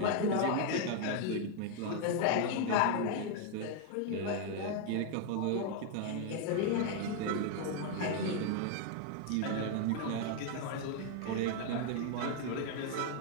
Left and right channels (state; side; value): different; both; correlation 0.00